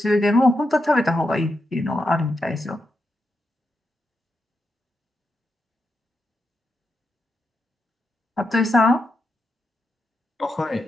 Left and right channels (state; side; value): normal; both; correlation 0.85